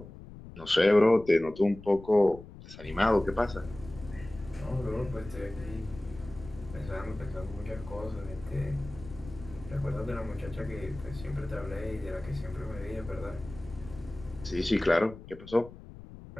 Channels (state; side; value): noise; left; rumble, 16 dB below the sound